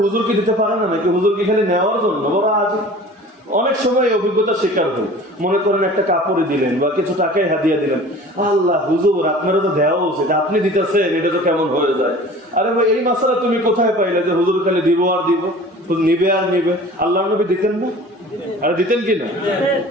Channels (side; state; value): both; normal; correlation 0.43